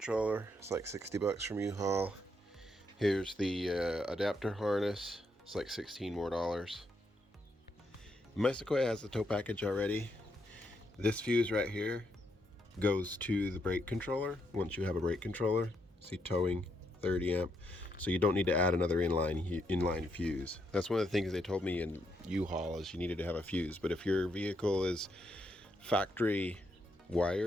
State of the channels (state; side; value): normal; both; correlation 0.78